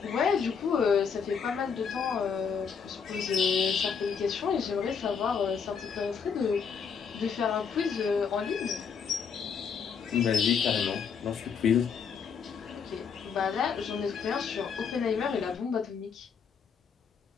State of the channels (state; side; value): quieter; right; 6.4 dB